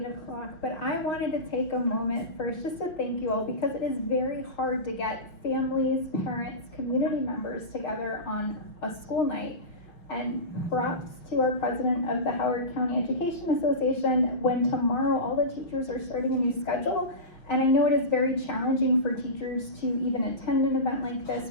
o'clock, but I wanted to take a moment first just to thank you all, because it is very hard to get families, parents, community members together on a school night. And props to our president of the Howard County Education Association, when tomorrow all the teachers are starting a new schedule. And I know it is very challenging for teachers to even attend an event like this,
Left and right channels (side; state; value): right; late; 6.1 ms